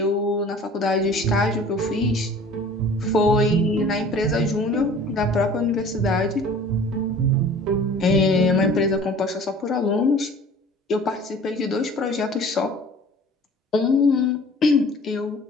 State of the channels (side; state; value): both; normal; correlation 0.47